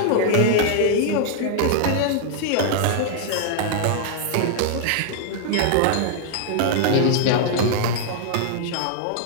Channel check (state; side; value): different; both; correlation 0.00